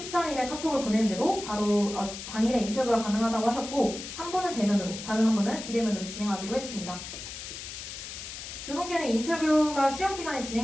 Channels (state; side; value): noise; left; hiss, 10 dB below the sound